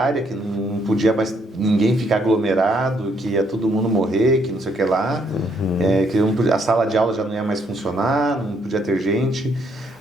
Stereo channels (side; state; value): both; normal; correlation 0.71